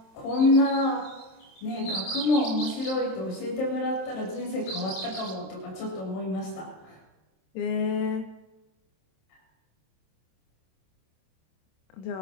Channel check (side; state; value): right; late; 27 ms